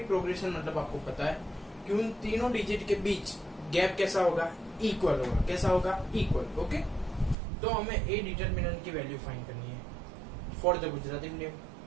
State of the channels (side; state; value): left; drops out; at 7.4 s